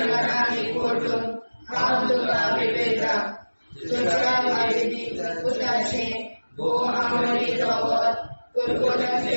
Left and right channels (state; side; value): inverted; both; correlation -1.00